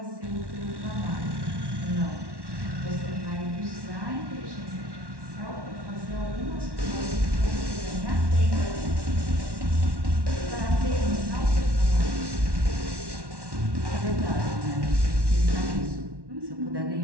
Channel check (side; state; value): left; late; 1.1 ms